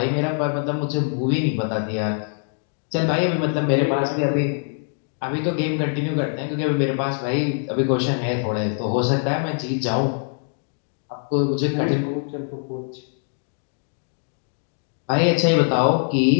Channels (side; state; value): right; silent; 57 dB below the other